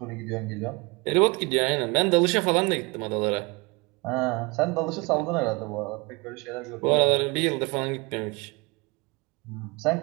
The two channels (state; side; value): quieter; left; 26.4 dB